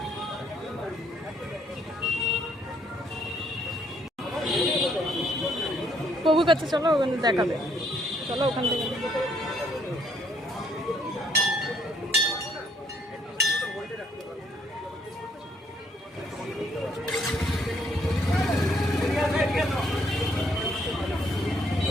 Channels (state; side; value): normal; both; correlation 0.68